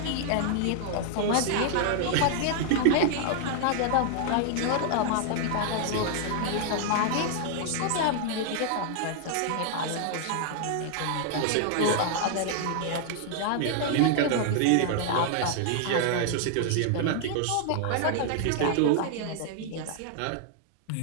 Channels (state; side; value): different; both; correlation 0.00